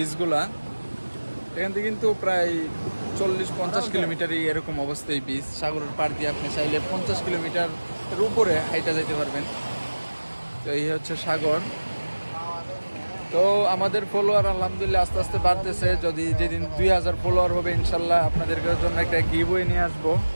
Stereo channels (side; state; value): both; inverted; correlation -1.00